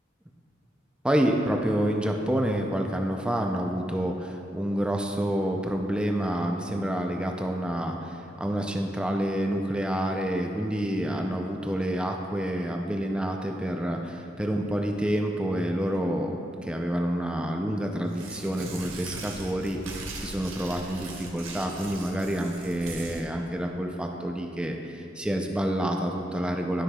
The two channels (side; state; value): both; normal; correlation 0.84